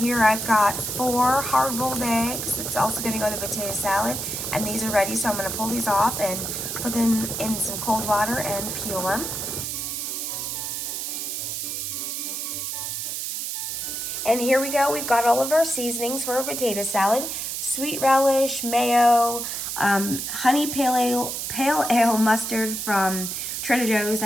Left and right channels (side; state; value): right; noise; hiss, 4 dB below the sound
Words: I've got 4 hard-boiled eggs. That's also going to go in the potato salad. And these are ready, so I'm going to pull these off and put them in some cold water and peel them. And here we go. We've got all of our seasonings for a potato salad. Sweet relish, mayo, honey pale ale mustard from Trader Joe's.